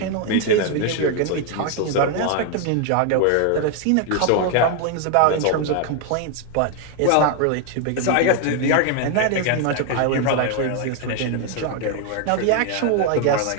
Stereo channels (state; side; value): different; both; correlation 0.01